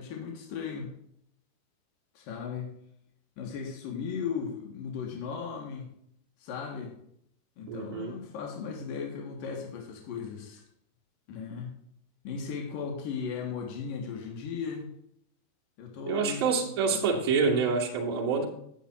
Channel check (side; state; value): right; late; 2.4 ms